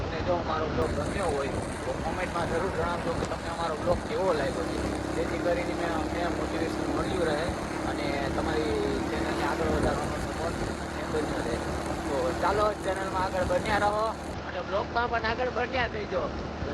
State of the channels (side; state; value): both; identical; correlation 1.00